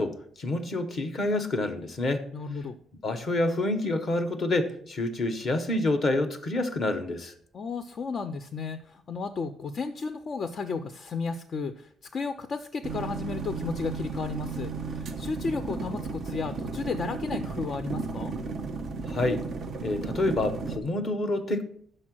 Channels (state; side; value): normal; both; correlation 0.69